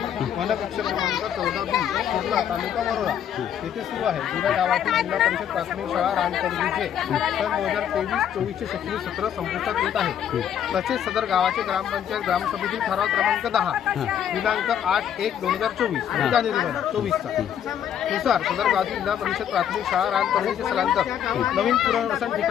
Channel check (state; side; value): quieter; right; 9.5 dB